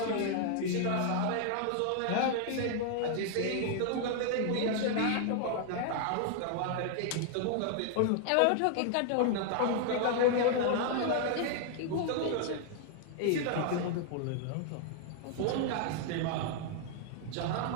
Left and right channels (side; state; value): both; different; correlation 0.00